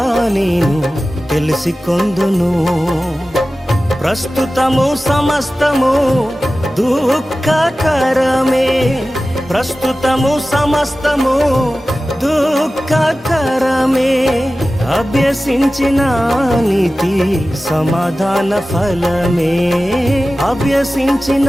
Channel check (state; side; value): normal; both; correlation 0.95